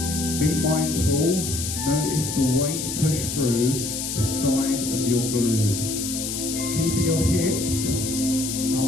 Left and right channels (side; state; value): left; noise; hiss, 4 dB below the sound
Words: Be mindful, notice the weight push through the side of your glute. Keeping your hips